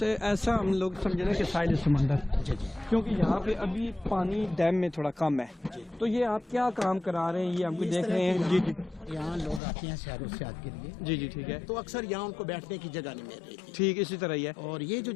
ऐसा हम लोग समझे ना कि साहिल समंदर, क्योंकि यहाँ पे अभी पानी डैम में थोड़ा कम है, तो ये आप क्या काम करा रहे हैं? ये हमको देख रहे हैं जी जी यहाँ लोग आते हैं सैर सियाहत के लिए, जी जी ठीक है। तो अक्सर यहाँ उनको बैठने की जगह नहीं मिल रही थी। ठीक इसी तरह ही है। और ये जो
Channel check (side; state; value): right; drops out; at 9.6 s